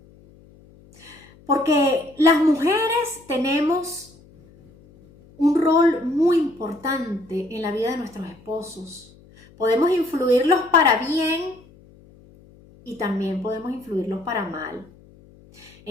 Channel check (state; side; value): noise; left; hum, 26 dB below the sound